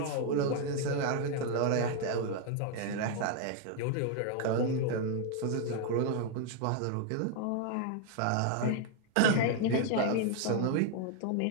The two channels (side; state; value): both; different; correlation 0.00